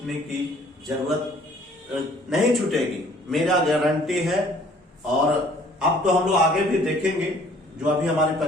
की जरूरत नहीं छूटेगी, मेरा गारंटी है। और अब तो हम लोग आगे भी देखेंगे, जो अभी हमारी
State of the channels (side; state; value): both; normal; correlation 0.56